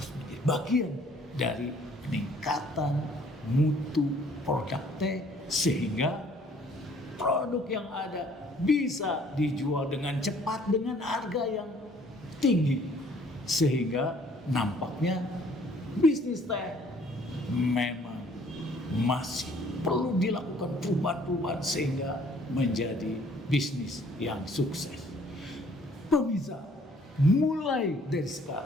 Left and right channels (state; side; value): normal; both; correlation 0.59